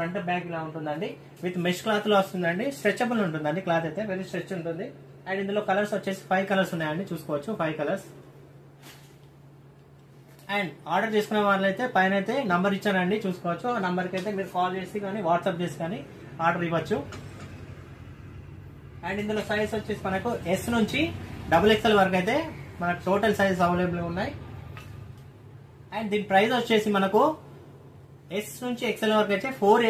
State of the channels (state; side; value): identical; both; correlation 1.00